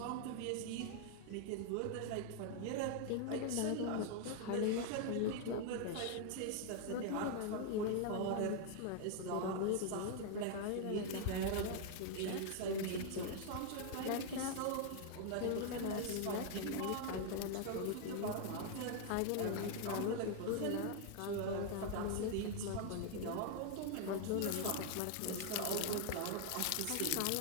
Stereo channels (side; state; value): both; different; correlation 0.00